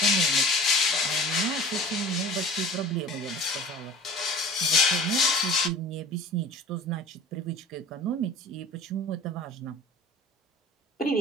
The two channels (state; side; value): normal; both; correlation 0.41